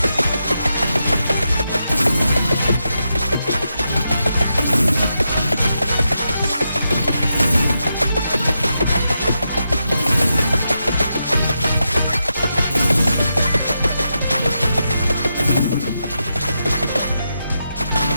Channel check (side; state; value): both; inverted; correlation -0.85